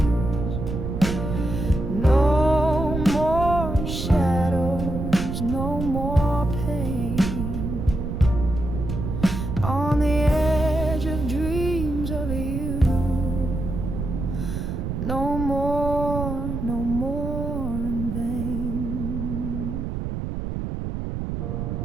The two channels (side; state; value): right; noise; rumble, 4 dB below the sound